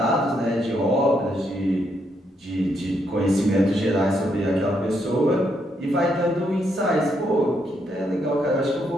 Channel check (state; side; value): normal; both; correlation 0.76